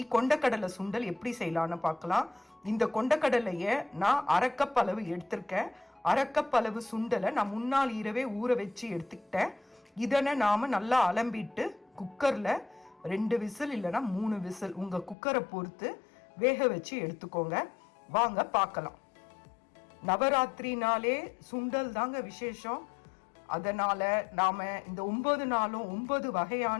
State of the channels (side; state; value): right; drops out; at 15.2 s